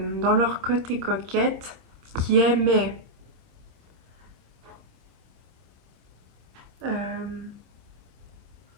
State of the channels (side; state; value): left; late; 26 ms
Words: dans leur côté coquette, qui aimaient